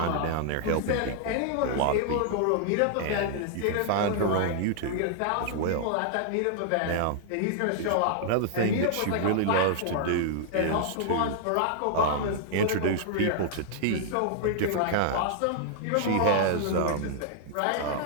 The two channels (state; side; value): different; both; correlation -0.01